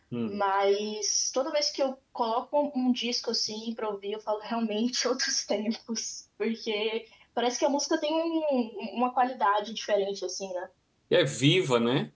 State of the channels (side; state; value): both; identical; correlation 1.00